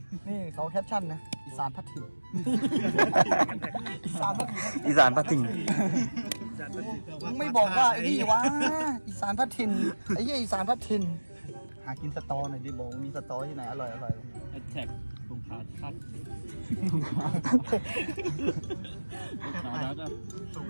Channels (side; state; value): both; inverted; correlation -1.00